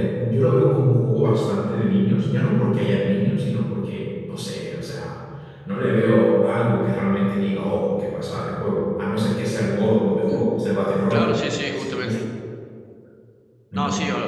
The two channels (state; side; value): identical; both; correlation 1.00